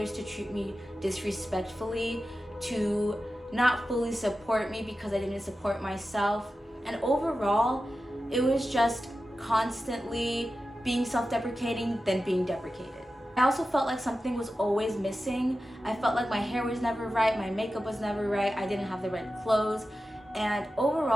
to treat me disrespectfully, to not fully support me because I didn't support myself. And overall, it was just constantly being self-deprecating, then being deprecated. I also felt like something was always missing. I felt like my hair was never right, my makeup was never right, I didn't have the right clothes, and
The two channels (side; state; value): both; normal; correlation 0.93